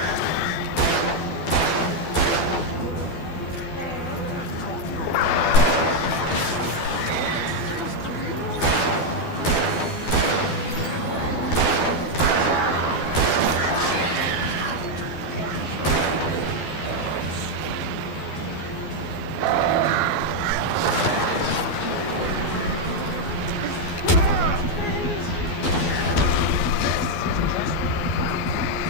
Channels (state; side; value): late; right; 12 ms